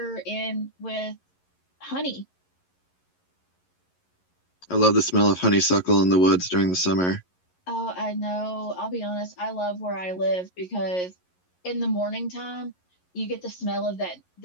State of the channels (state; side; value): late; right; 11 ms